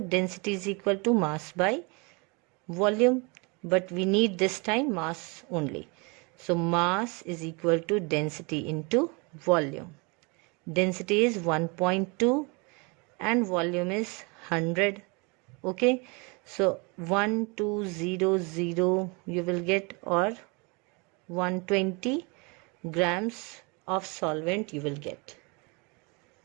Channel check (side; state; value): left; quieter; 30.0 dB